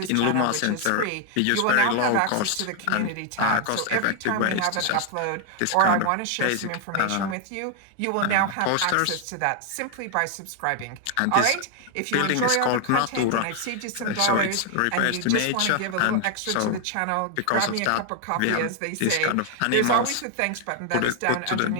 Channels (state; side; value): different; both; correlation 0.00